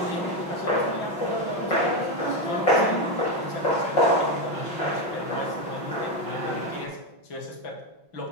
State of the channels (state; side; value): late; right; 5.6 ms